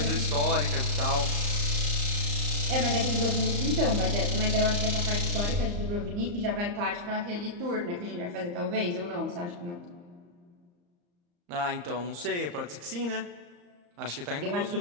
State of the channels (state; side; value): late; left; 34 ms